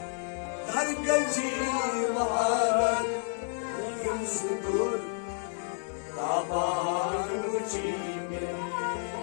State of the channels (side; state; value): right; silent; 58 dB below the other